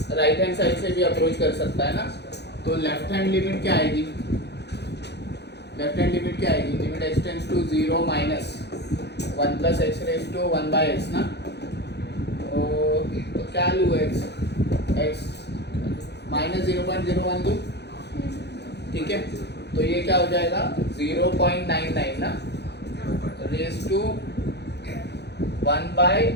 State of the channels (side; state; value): right; late; 0.49 ms